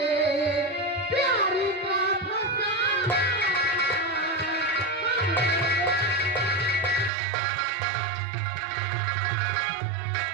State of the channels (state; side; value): drops out; left; at 7.1 s